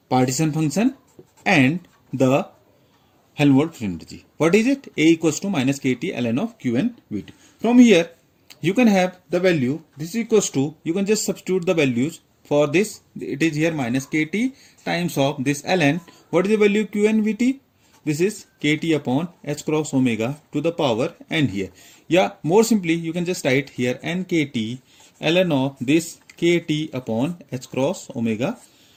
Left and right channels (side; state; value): both; identical; correlation 1.00